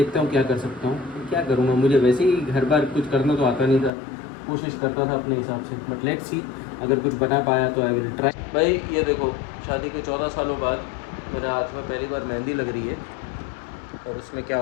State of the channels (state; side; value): drops out; right; at 3.9 s